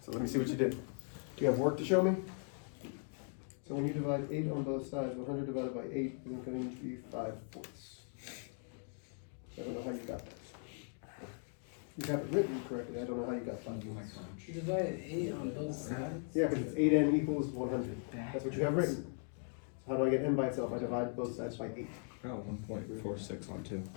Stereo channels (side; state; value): right; silent; 52 dB below the other